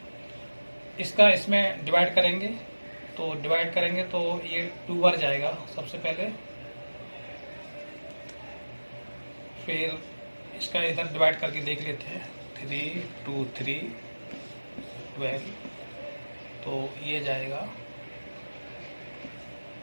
इसका इसमें डिवाइड करेंगे, तो ये 2 बार जाएगा सबसे पहले, फिर इसका इधर डिवाइड करके देख लेते हैं 3 2 3 12, तो ये जाएगा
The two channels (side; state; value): both; inverted; correlation -1.00